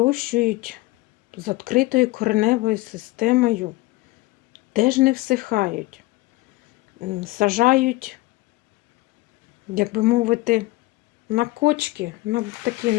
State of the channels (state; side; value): quieter; right; 20.2 dB